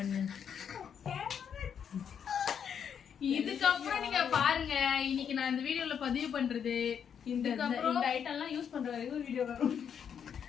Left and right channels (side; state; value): right; quieter; 7.8 dB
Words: இதுக்கப்புறம் நீங்க பாருங்க இன்னைக்கு நான் இந்த வீடியோல பதிவு பண்றது இந்த ஐட்டம்லாம் யூஸ் பண்ற வரைக்கும் வீடியோ வரும்.